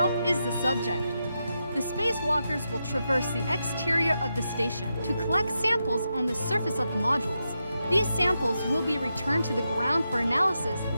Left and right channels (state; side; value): inverted; both; correlation -0.86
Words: is the subject. The spacewalkers will traverse the exterior of the station to collect samples on the surface of the modules. These samples will be returned to the ground for analysis